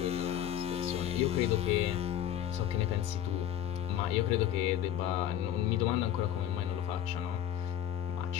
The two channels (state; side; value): quieter; right; 10.8 dB